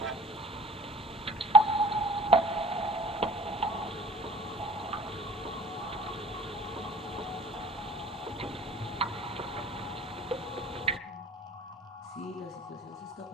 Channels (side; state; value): both; normal; correlation 0.45